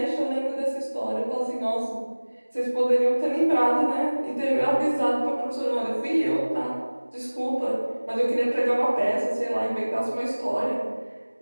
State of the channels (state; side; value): inverted; both; correlation -1.00